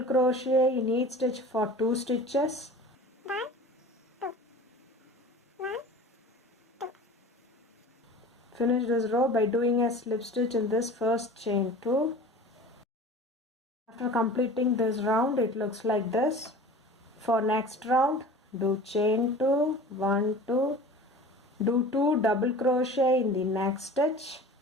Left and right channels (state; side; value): normal; both; correlation 0.39